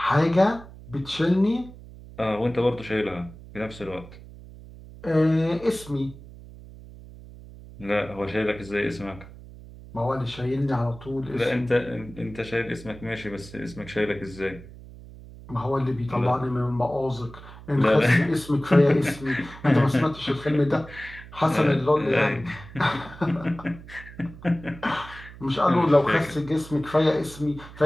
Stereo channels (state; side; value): noise; right; hum, 17 dB below the sound